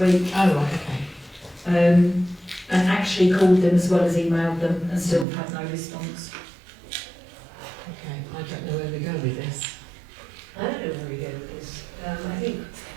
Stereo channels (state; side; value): drops out; left; at 5.2 s